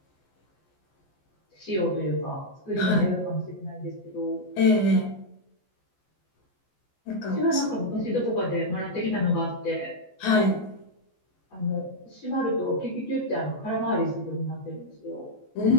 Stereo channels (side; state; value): right; late; 14 ms